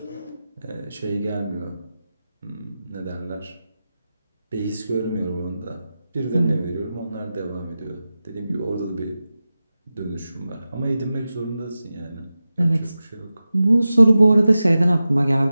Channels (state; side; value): inverted; both; correlation -0.94